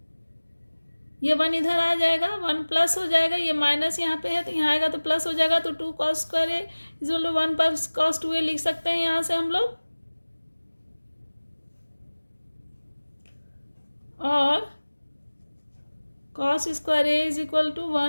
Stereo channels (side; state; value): both; inverted; correlation -1.00